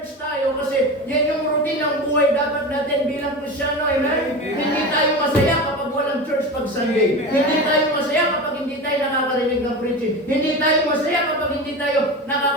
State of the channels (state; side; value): normal; both; correlation 0.26